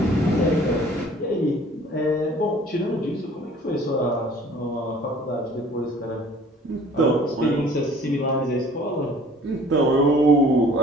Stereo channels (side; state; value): both; normal; correlation 0.52